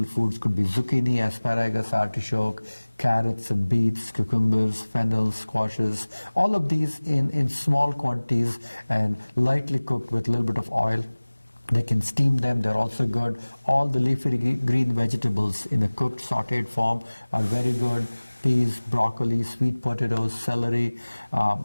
foods could be zucchini, asparagus, artichoke, carrots and beets, cucumbers, fennel, squashes. All of these in small quantities and lightly cooked with a little bit of oil. They can steam them, they're also good. All the leafy green vegetables in a cooked, sauteed form are very good. Peas, broccoli, sweet potatoes, celery,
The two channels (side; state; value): both; inverted; correlation -1.00